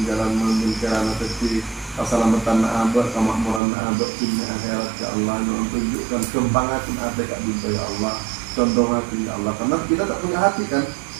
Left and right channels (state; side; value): drops out; left; at 3.6 s